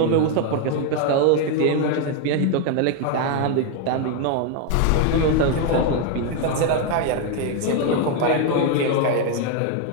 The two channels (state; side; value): different; both; correlation 0.01